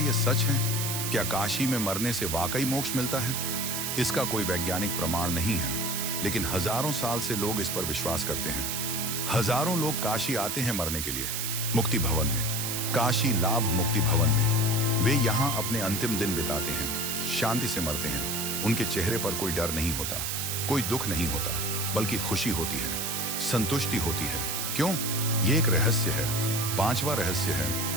सच है? क्या काशी में मरने से वाकई मोक्ष मिलता है? इसका कोई वैज्ञानिक प्रमाण नहीं है, लेकिन हजारों साल से लोग इस पर विश्वास करते हैं। हजारों लोग काशी आते हैं मरने के लिए, मुक्ति भवन में, काशी लाभ मुक्ति भवन में। वे यहाँ अपने अंतिम दिन बिताते हैं, शांति से मरते हैं। उनके चेहरे पर कोई डर नहीं होता, कोई दुख नहीं होता, बल्कि खुशी होती है, संतुष्टि होती है। क्यों? ये एक रहस्य है। पांचवा रहस्य है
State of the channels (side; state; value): right; noise; hiss, 1 dB below the sound